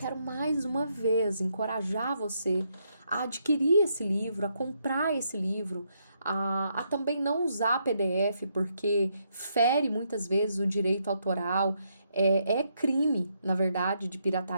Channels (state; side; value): inverted; both; correlation -0.77